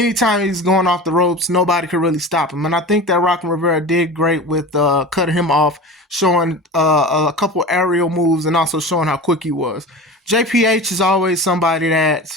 he's going off the ropes, nobody could really stop him. And I think that Rockin' Rivera did great with cutting him off, showing a couple aerial moves, and also showing how quick he was. JPH is always somebody that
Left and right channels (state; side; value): normal; both; correlation 0.32